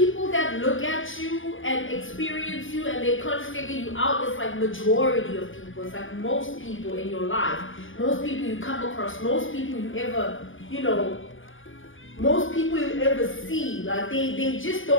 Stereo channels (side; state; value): right; late; 0.57 ms